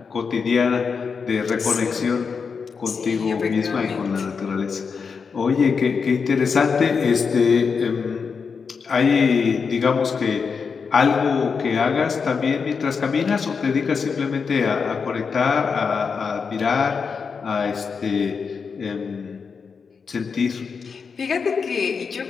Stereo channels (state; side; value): quieter; right; 5.6 dB